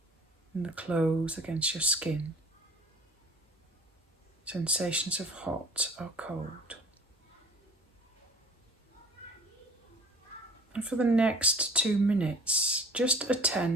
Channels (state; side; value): normal; both; correlation 0.46